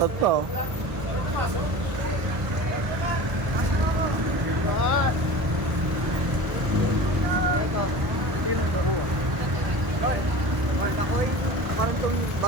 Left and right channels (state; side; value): late; left; 1.2 ms